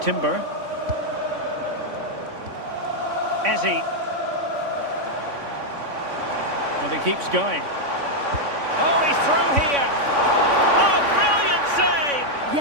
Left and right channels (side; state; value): left; late; 3.5 ms